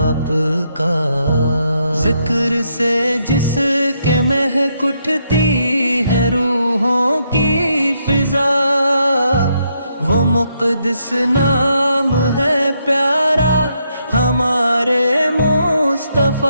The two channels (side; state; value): both; inverted; correlation -0.77